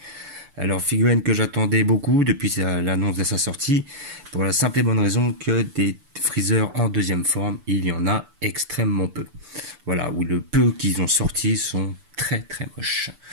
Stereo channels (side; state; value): left; late; 6.9 ms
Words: Alors figurine que j'attendais beaucoup depuis l'annonce de sa sortie, pour la simple et bonne raison que des Freezer en deuxième forme, il y en a extrêmement peu. Voilà, ou le peu qu'ils ont sorti sont très moches.